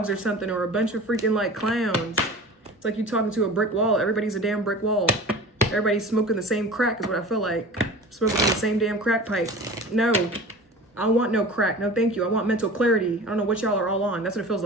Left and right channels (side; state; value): both; normal; correlation 0.37